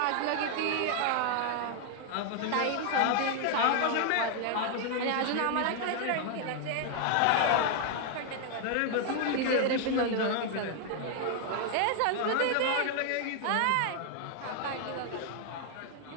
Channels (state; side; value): different; both; correlation 0.00